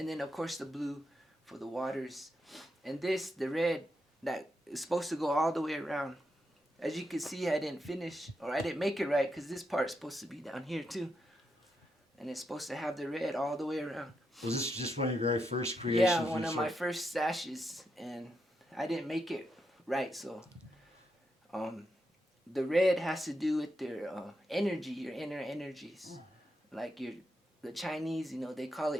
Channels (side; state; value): both; normal; correlation 0.83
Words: then of course the blue for the waters, and this, the red, that is supposed to go all the way around. As you can see, I didn't finish, or I didn't make it right, because this part's supposed to be down here too, and it's supposed to have the red all the way around. Was this just one of your very first creations? Yeah, one of my first sashes, and I didn't make it right, so the red has to do with their energy, your inner energies. Like the Chinese, you know, they call